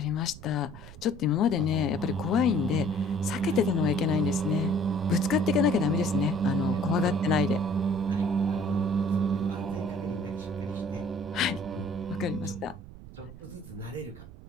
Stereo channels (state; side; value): noise; right; rumble, 16 dB below the sound